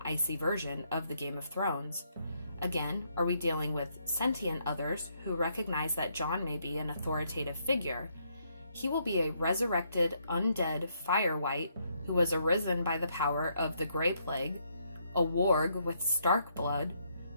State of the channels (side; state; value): both; inverted; correlation -0.74